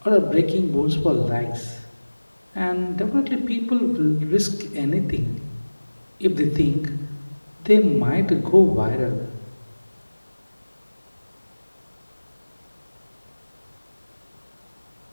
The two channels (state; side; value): inverted; both; correlation -1.00